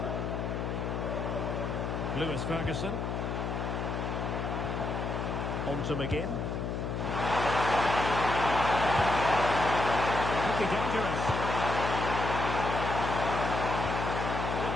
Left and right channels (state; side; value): noise; left; hum, 2 dB below the sound